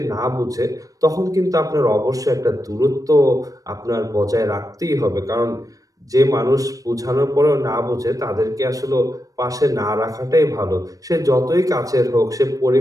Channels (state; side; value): late; left; 0.17 ms